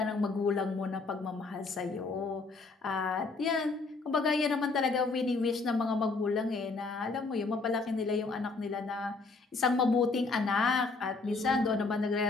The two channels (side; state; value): right; quieter; 3.9 dB